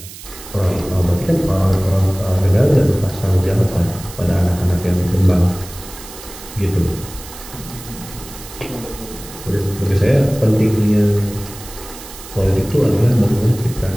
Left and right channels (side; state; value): right; noise; hiss, 15 dB below the sound